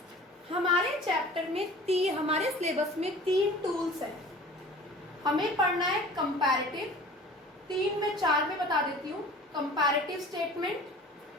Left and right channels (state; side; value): normal; both; correlation 0.43